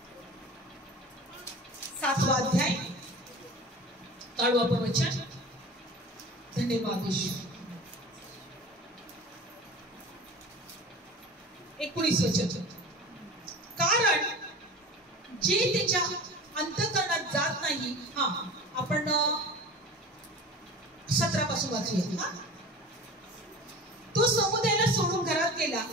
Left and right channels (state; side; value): normal; both; correlation 0.37